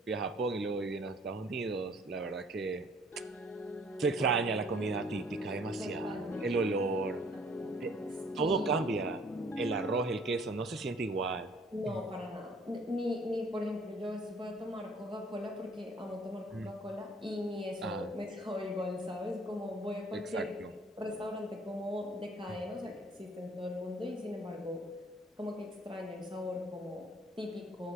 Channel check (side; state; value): both; normal; correlation 0.57